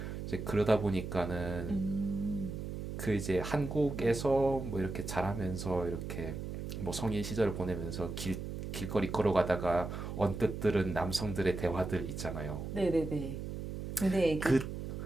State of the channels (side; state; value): right; noise; hum, 6 dB below the sound